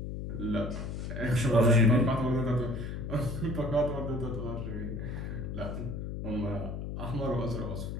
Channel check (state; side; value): noise; left; hum, 5 dB below the sound